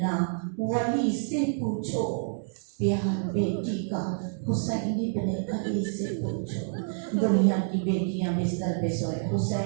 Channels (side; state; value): left; silent; digital silence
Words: نہ ولی سے پوچھو پیار بیٹی کا حسین ابن علی سے پوچھو. دنیا کی بیٹیاں بستر پہ سوئے